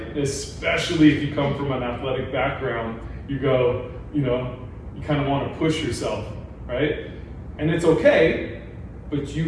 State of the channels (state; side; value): identical; both; correlation 1.00